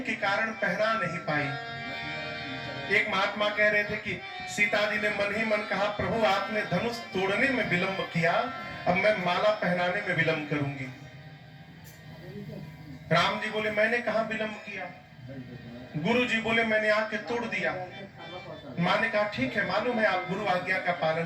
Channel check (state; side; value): identical; both; correlation 1.00